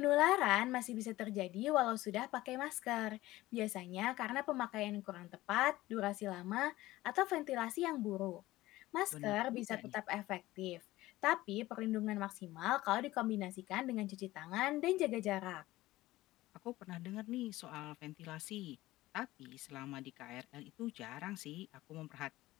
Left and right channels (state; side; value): quieter; right; 17.3 dB